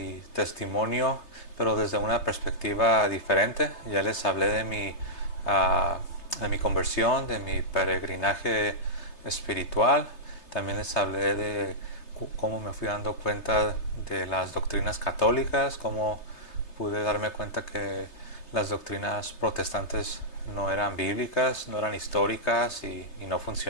testimonio, pero desde una perspectiva diferente. Ya les hablé de mi conversión, de mi peregrinaje espiritual. También les hablé de cómo me fui dando cuenta de las doctrinas católicas, cómo pude darme cuenta que las doctrinas protestantes no eran bíblicas, no eran históricas y no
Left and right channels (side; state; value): right; late; 3.3 ms